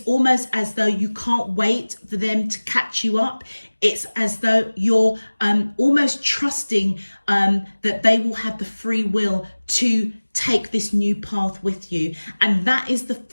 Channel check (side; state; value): both; inverted; correlation -1.00